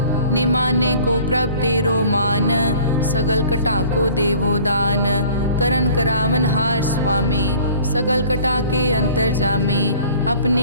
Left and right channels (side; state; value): both; inverted; correlation -0.49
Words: निमाने को प्रभ तेरो मान, सगल कटा को देवो दान। करन करावन हार स्वामी, सगल कटा के अंतर जामे।